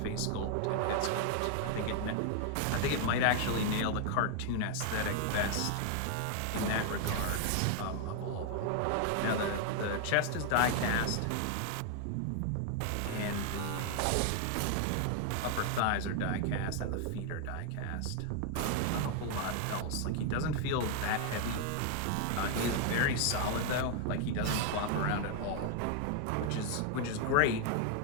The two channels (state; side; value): different; both; correlation 0.00